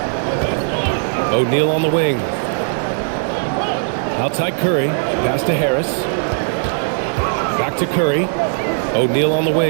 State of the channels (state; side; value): silent; left; digital silence